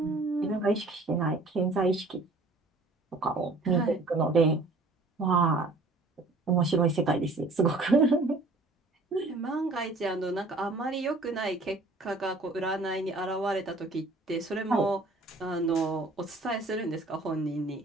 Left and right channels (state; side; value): quieter; left; 3.1 dB